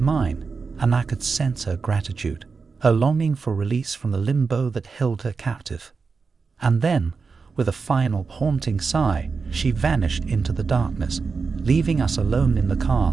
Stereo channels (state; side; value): quieter; left; 4.8 dB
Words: and I could sense her gratitude, her longing for release from the limbo that held her captive. And then, with a final haunting sigh, she vanished into the darkness, leaving us alone in the